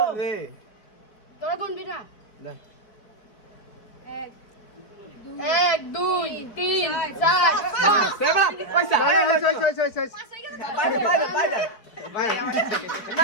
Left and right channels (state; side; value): late; right; 4.5 ms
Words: রে তোরা গুনবি না দে এক দুই তিন চার পাঁচ সেবা পয়সা বাইরে